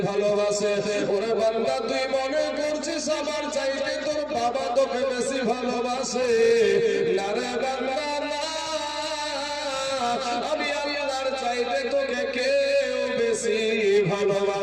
ভালোবাসে। ওরে বান্দা তুই মনে করছিস আমার চাইতে তোর বাবা তোকে বেশি ভালোবাসে। না রে বান্দা না, আমি আল্লাহর চাইতে তোকে কেউ বেশি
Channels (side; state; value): left; noise; hum, 26 dB below the sound